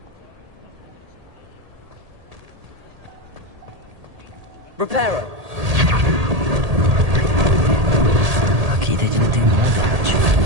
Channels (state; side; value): late; left; 1.8 ms